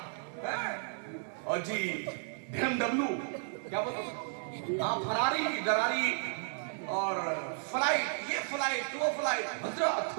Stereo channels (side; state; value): left; silent; digital silence